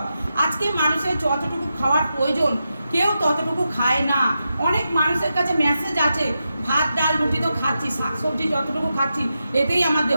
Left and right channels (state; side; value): inverted; both; correlation -0.88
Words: আজকে মানুষের যতটুকু খাওয়ার প্রয়োজন কেউ ততটুকু খায় না। অনেক মানুষের কাছে মেসেজ আছে, ভাত ডাল রুটি তো খাচ্ছি, শাকসবজি যতটুকু খাচ্ছি এতেই আমার